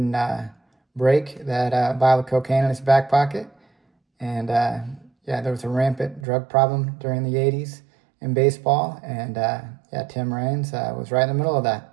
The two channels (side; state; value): left; drops out; at 6.2 s